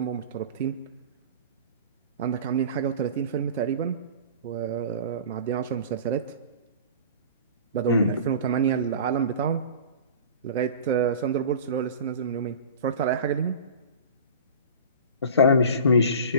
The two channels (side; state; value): both; inverted; correlation -0.38